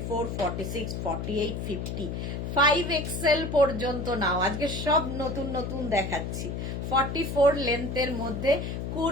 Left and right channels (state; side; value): noise; left; hum, 4 dB below the sound